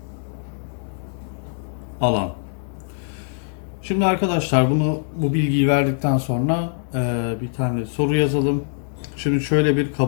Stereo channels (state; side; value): silent; right; 64 dB below the other